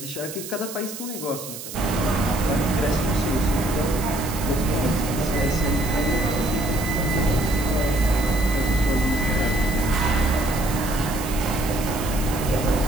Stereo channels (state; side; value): noise; right; hiss, 11 dB below the sound